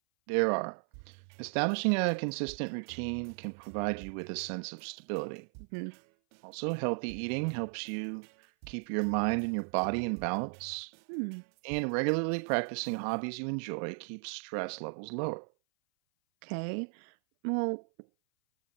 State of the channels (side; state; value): left; silent; 55 dB below the other